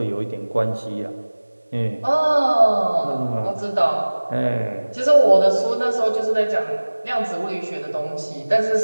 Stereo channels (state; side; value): inverted; both; correlation -1.00